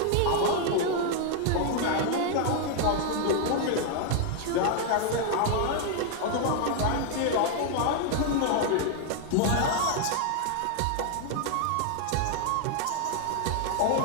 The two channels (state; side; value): different; both; correlation 0.00